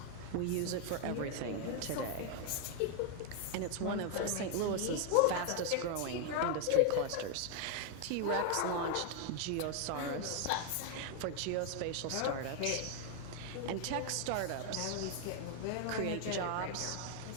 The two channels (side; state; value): both; different; correlation 0.00